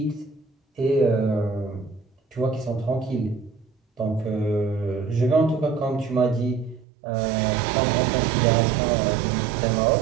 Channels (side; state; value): left; drops out; at 6.9 s